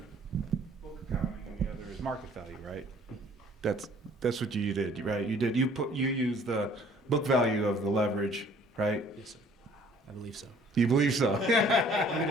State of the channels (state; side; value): normal; both; correlation 0.56